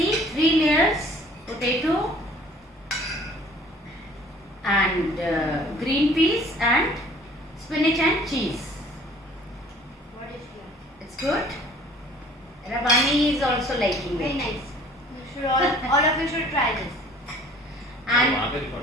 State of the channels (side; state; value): both; normal; correlation 0.52